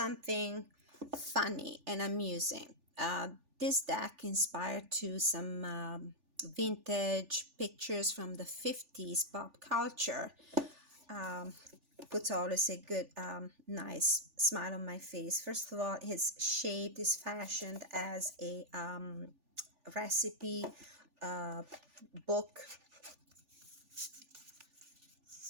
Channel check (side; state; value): left; late; 3.4 ms